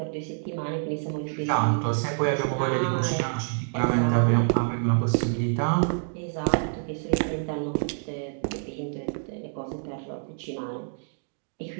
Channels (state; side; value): silent; left; digital silence